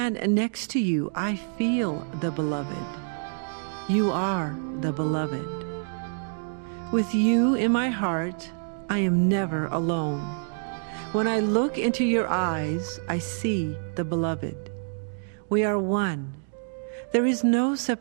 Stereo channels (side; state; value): left; silent; 60 dB below the other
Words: next to you, I feel the beloved. You are the beloved. With you in my heart, I am never alone. When I look into your eyes, I see the beloved. We are one. There is no